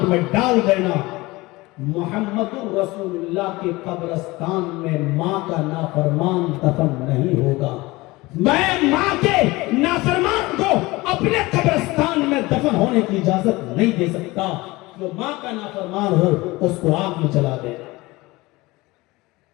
میں ڈال دینا۔ محمد رسول اللہ کے قبرستان میں ماں کا نافرمان دفن نہیں ہوگا۔ میں ماں کے نافرمان کو اپنے قبرستان میں دفن ہونے کی اجازت نہیں دے سکتا، جو ماں کا نافرمان ہو اس کو آگ میں چلا دینا۔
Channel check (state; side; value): quieter; right; 21.3 dB